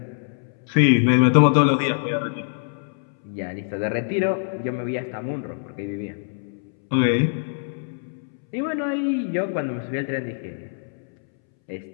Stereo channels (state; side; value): silent; right; 63 dB below the other